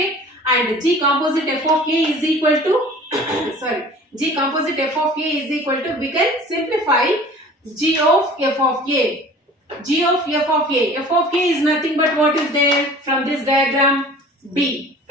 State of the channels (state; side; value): normal; both; correlation 0.45